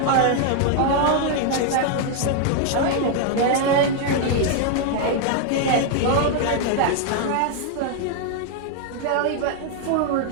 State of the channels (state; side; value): different; both; correlation 0.00